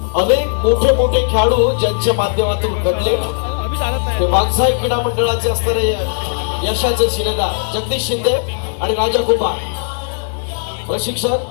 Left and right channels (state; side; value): silent; right; digital silence